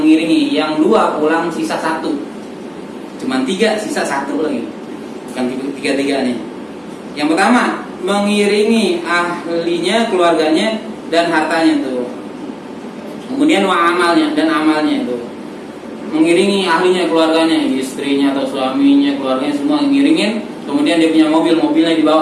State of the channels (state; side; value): identical; both; correlation 1.00